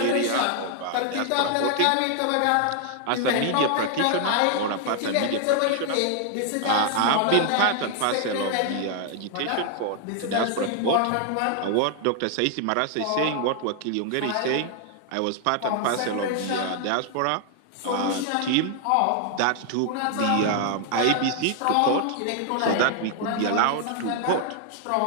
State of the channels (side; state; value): both; different; correlation 0.00